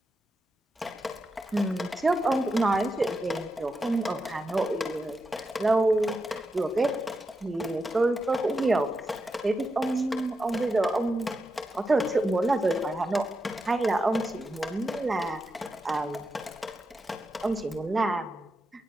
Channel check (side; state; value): both; normal; correlation 0.87